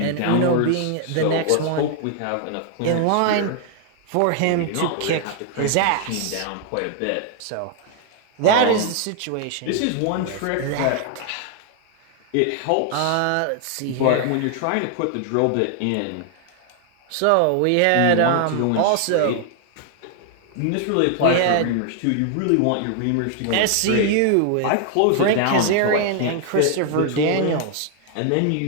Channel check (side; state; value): both; different; correlation 0.00